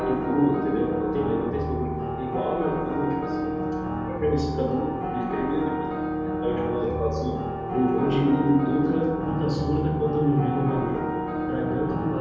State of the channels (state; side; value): identical; both; correlation 1.00